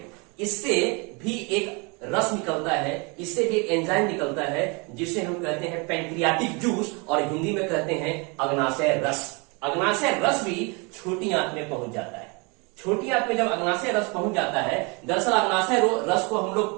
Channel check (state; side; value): quieter; left; 30.4 dB